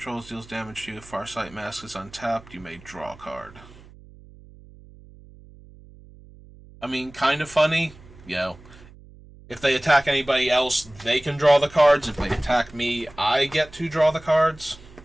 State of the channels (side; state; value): right; noise; hum, 22 dB below the sound